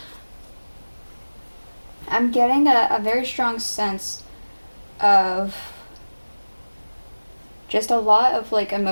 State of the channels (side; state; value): both; inverted; correlation -1.00